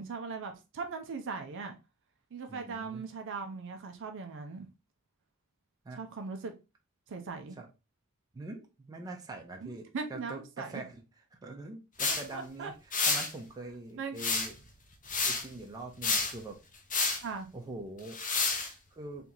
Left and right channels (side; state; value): both; normal; correlation 0.05